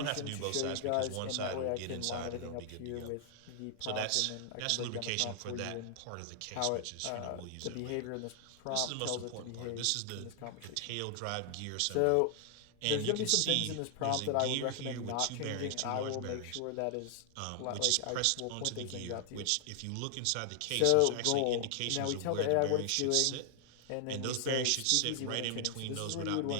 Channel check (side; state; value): both; different; correlation 0.00